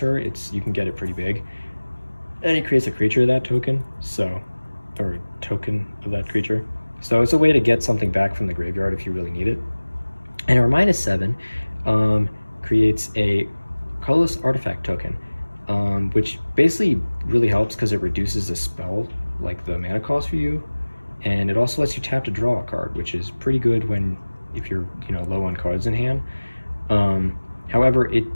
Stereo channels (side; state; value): both; inverted; correlation -1.00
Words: you can get it pretty big. And it creates a creature of that token, or a token of that creature. So it's a way to get something back from the graveyard if you really need it. And her -7 creates a colorless artifact token, which basically really helps because it reduces the spell, like the mana cost for you, and it also lets you tap to draw a card, which is pretty good if you're low on cards in hand. However, it